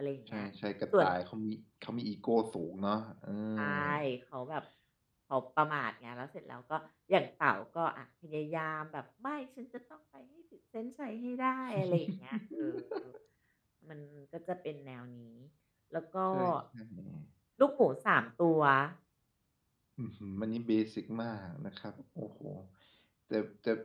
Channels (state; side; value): identical; both; correlation 1.00